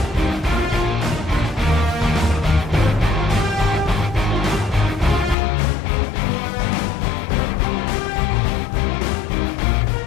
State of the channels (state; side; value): drops out; right; at 5.4 s